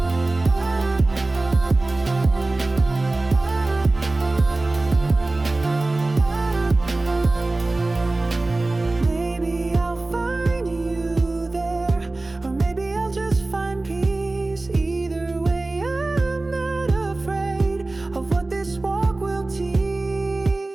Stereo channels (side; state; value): left; quieter; 3.0 dB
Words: Maybe I'll find you there, or maybe I'll just find peace. Either way, I'm not afraid of what this walk will teach.